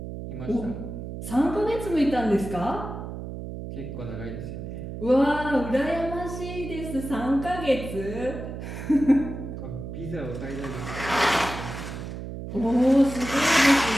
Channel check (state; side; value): noise; right; hum, 8 dB below the sound